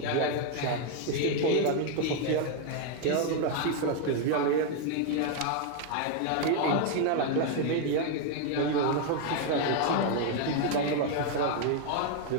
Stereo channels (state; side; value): different; both; correlation 0.01